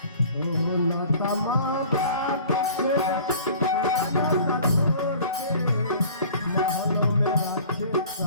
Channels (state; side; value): inverted; both; correlation -0.46